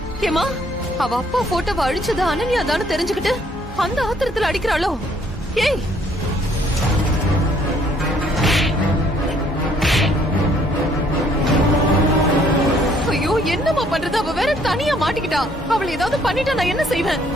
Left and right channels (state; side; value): normal; both; correlation 0.64